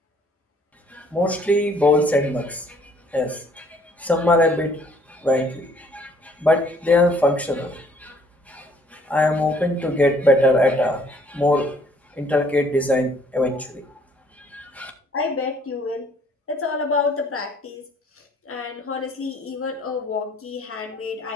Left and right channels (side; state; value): both; normal; correlation 0.61